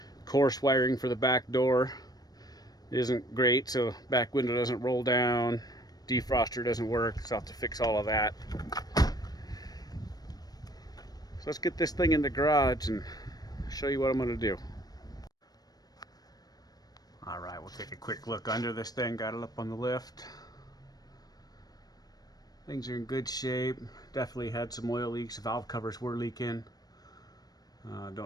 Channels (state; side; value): late; right; 0.19 ms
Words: Coarse wiring for the back door isn't great, so back window doesn't roll down. Defroster doesn't work, so I'll have to fix all of that. So let's get this thing in the garage and show you what I'm going to do. Alright, we'll take a quick look under this thing. Got it up on the lift. Things are in good shape. Definitely had some oil leaks. The valve covers were leaking.